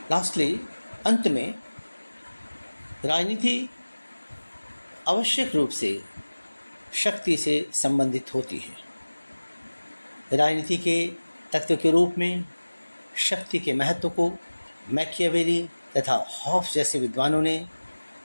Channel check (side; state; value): both; inverted; correlation -1.00